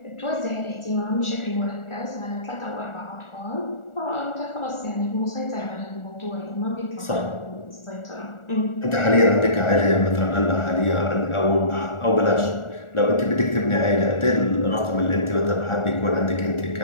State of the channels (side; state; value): right; late; 1.4 ms